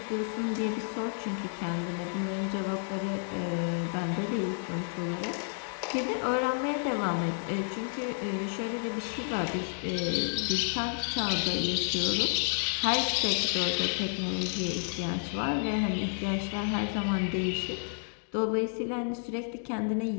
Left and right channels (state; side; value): silent; right; 57 dB below the other